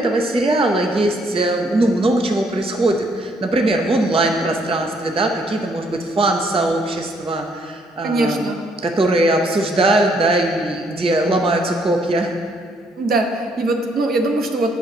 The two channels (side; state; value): both; normal; correlation 0.69